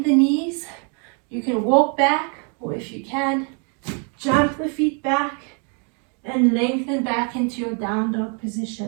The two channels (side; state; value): left; quieter; 39.1 dB